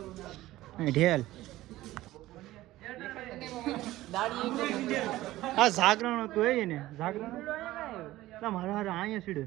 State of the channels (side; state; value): left; quieter; 16.3 dB